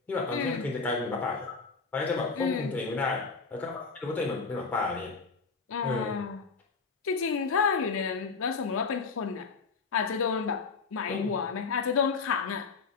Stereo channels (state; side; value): quieter; right; 4.7 dB